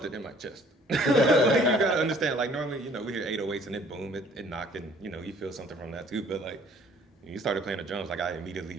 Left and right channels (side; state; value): both; normal; correlation 0.57